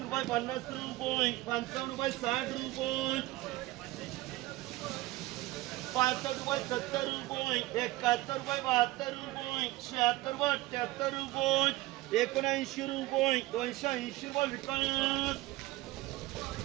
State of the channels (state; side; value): quieter; left; 18.6 dB